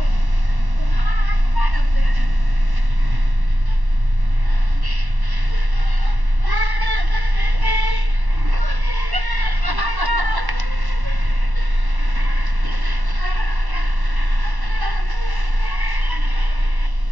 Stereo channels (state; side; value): late; left; 1.1 ms